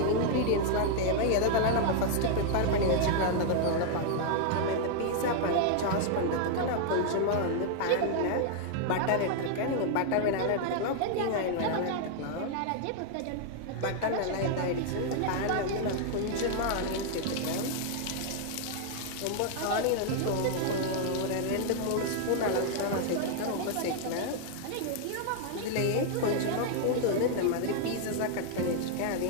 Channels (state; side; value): different; both; correlation 0.00